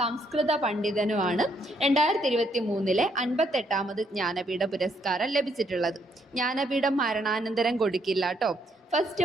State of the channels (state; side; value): normal; both; correlation 0.72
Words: പണ്ഡിതനുമാണ് 2023 58ാമത് ജ്ഞാനപീഠ പുരസ്കാരം ലഭിച്ചിട്ടുള്ളത്. ജ്ഞാനപീഠം മരണാനന്തരം കൊടുക്കില്ല കേട്ടോ. ഫസ്റ്റ്